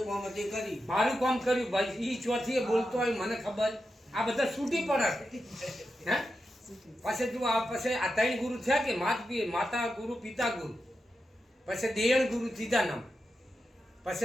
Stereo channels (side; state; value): both; normal; correlation 0.89